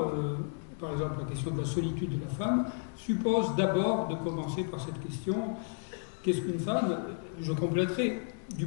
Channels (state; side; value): silent; right; 56 dB below the other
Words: par exemple la question de la solitude de la femme, suppose d'abord de commencer par cette question, qu'est-ce qu'une femme? Je compléterai du